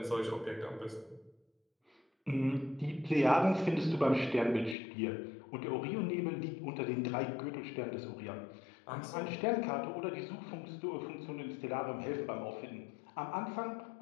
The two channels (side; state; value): right; drops out; at 4.8 s